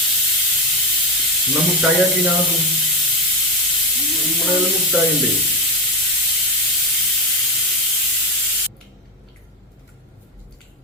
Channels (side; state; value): both; normal; correlation 0.12